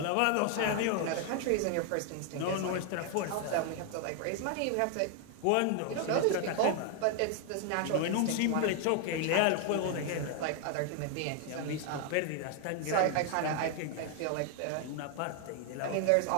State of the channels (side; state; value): both; different; correlation 0.00